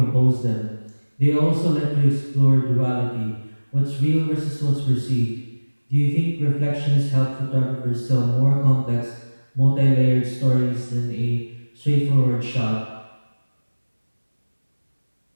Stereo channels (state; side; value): inverted; both; correlation -1.00